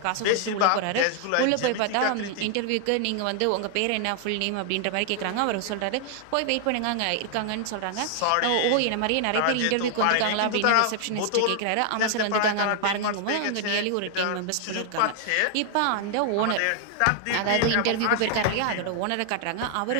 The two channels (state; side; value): different; both; correlation 0.00